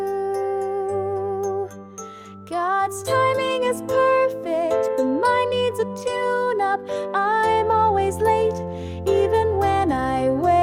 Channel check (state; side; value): identical; both; correlation 1.00